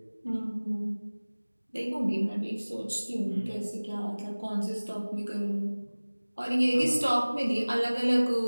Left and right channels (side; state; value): both; inverted; correlation -1.00